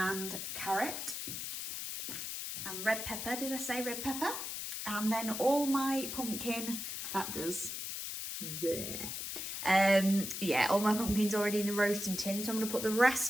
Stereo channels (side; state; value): left; noise; hiss, 5 dB below the sound